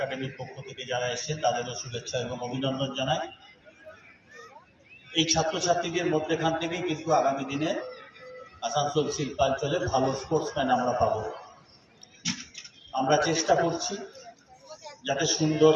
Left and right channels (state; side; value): identical; both; correlation 1.00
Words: পক্ষ থেকে যারা এসেছেন তাদেরও শুভেচ্ছা এবং অভিনন্দন জানাই। এই ছাত্রছাত্রীদের মধ্যেখান থেকেই কিন্তু আগামী দিনে আসানসোল শিল্পাঞ্চলে ভালো স্পোর্টসম্যান আমরা পাব। আমরা চেষ্টা করছি যাতে সুন্দর